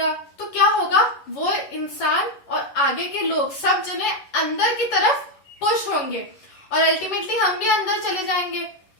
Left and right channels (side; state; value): right; late; 11 ms